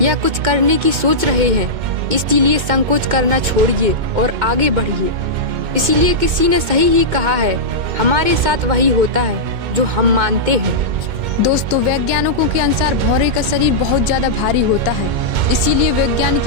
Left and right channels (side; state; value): left; late; 2.2 ms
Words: या कुछ करने की सोच रहे हैं। इसीलिए संकोच करना छोड़िए और आगे बढ़िए। इसीलिए किसी ने सही ही कहा है, हमारे साथ वही होता है जो हम मानते हैं। दोस्तों, वैज्ञानिकों के अनुसार भौरे का शरीर बहुत ज्यादा भारी होता है, इसीलिए वैज्ञानिक